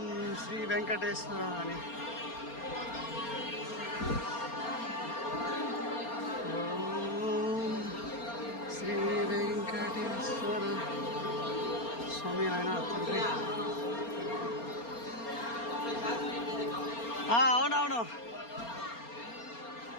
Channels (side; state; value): right; late; 4.3 ms